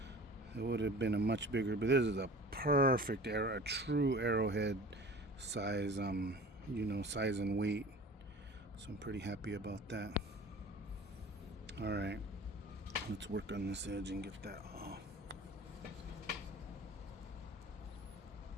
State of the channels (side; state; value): both; normal; correlation 0.42